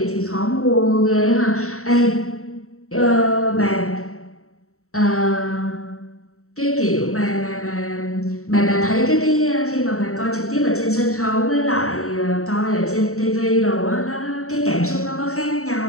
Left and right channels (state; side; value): late; right; 0.64 ms